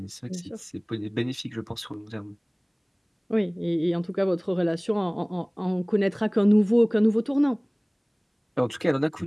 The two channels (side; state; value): both; identical; correlation 1.00